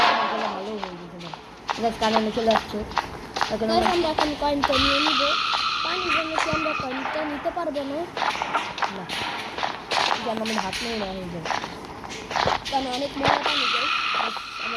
আমার গলা ভালো হয়ে গেছে। গাইস কারণে চলে আসছে এখন আমরা এখন কয়েনটা নিয়ে নিব। পানির জন্য কি আমরা কয়েনটা নিতে পারবো না? না যেন আমি হাত নিয়ে না হয়ে যায় কারণ অনেক মজা পানি যায়।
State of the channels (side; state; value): both; identical; correlation 1.00